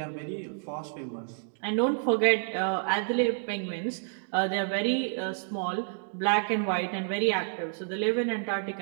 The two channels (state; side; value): silent; left; digital silence